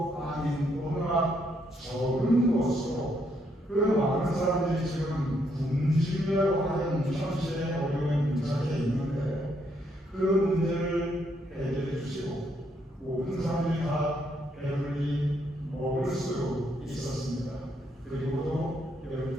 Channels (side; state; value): both; normal; correlation 0.74